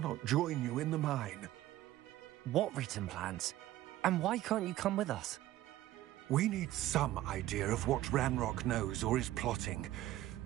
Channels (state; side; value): quieter; left; 14.9 dB